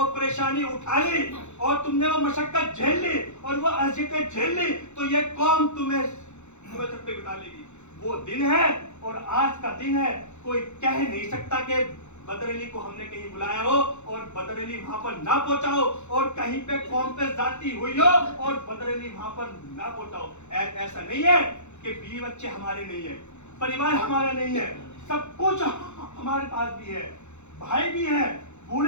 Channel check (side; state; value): right; late; 0.83 ms